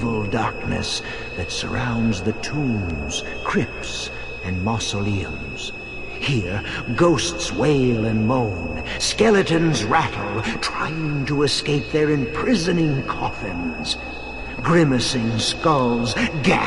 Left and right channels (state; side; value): identical; both; correlation 1.00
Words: darkness that surrounds the tombs, crypts, and mausoleums. Here, ghosts wail and moan, skeletons rattle, trying to escape their imprisoning coffins. Grimacing skulls